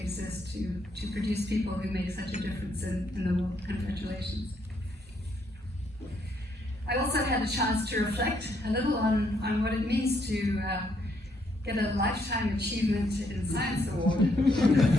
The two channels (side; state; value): both; normal; correlation 0.73